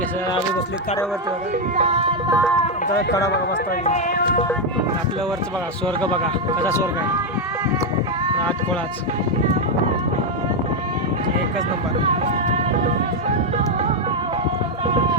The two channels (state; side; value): normal; both; correlation 0.03